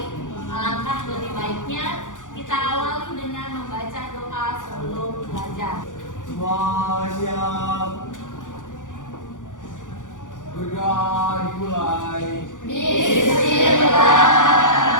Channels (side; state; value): right; late; 0.87 ms